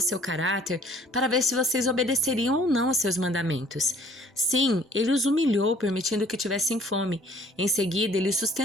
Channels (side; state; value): both; normal; correlation 0.57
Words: caráter, para ver se vocês obedeceriam ou não aos seus mandamentos. Sim, ele os humilhou, permitindo que tivessem fome. Em seguida, ele os